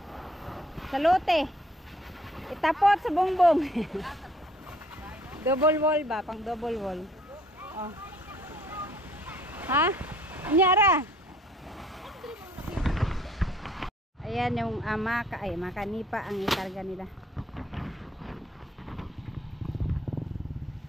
Sa lote. Itapot sa bongbong. Double wall ba? Pang double wall. Oh. Ha? Anyara? Ayan yung makanipa ang ikarga nila.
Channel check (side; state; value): both; normal; correlation 0.60